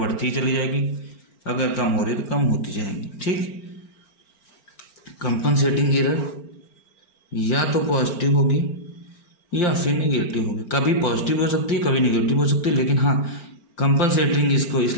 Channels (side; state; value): right; late; 4.4 ms